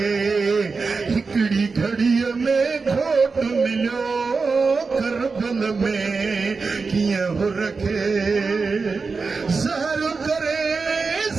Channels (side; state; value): left; quieter; 4.5 dB